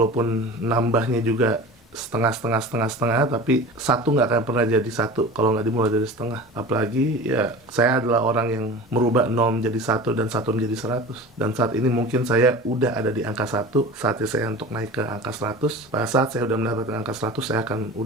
nambahnya juga setengah, tapi satu nggak akan pernah jadi satu kalau nggak dimulai dari setengah. Apalagi ya, saya adalah orang yang merubah 0 menjadi 1 dan 1 menjadi 100. Dan saat ini mungkin saya udah ada di angka 1, saatnya saya untuk naik ke angka 100. Pada saat saya udah mendapatkan angka 100, saya akan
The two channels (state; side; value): normal; both; correlation 0.36